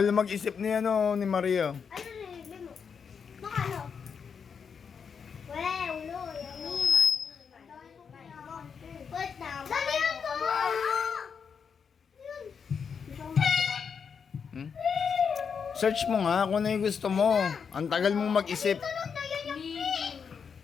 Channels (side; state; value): right; quieter; 6.4 dB